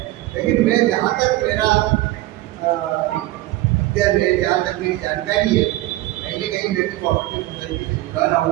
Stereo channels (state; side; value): quieter; left; 17.2 dB